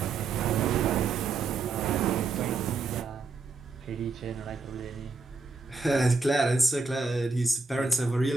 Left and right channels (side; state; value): left; quieter; 4.1 dB